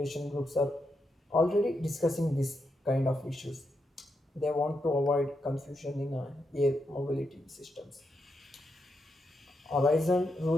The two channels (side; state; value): both; normal; correlation 0.83